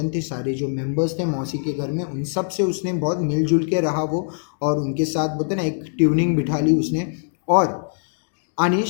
थे, सारे जो मेंबर्स थे मौसी के घर में, उन सब से उसने बहुत मिलजुल के रहा वो, और उनके साथ बोलते ना एक ट्यूनिंग बिठा ली उसने. और आणि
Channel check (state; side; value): silent; right; digital silence